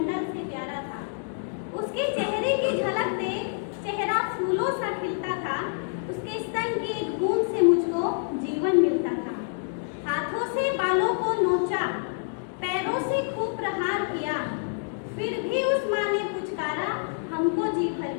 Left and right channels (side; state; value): right; silent; digital silence